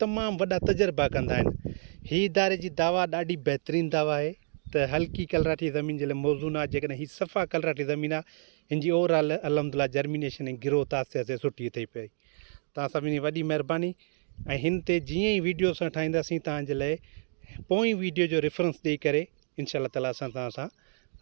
वॾा तजुर्बा कंदा आहिनि। ही इदारे जी दावा ॾाढी बहितरीनु दावा आहे त हल्की कलराठी ज़मीन जे लाइ मौज़ून आहे। जेकॾहिं ही सफ़ा कलराठी ज़मीन आहे, हिन जी ओवरऑल अलहमदिल्ला जर्मिनेशन ऐं ग्रोथ आस्ते आस्ते सुठी थी पई। तव्हां सभिनी वॾी महिरबानी। ऐं हिन ते जीअं ई वीडियो असां ठाहींदासीं तव्हांजे लाइ, पोइ वीडियो जो रेफरेंस ॾेई करे इंशाअल्लाह ताला असां तव्हां सां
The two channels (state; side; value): silent; left; digital silence